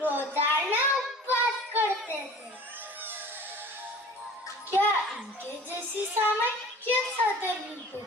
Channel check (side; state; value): both; normal; correlation 0.43